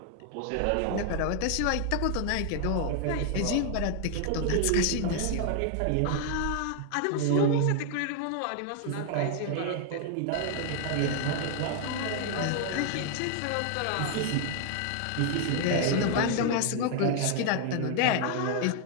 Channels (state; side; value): different; both; correlation 0.00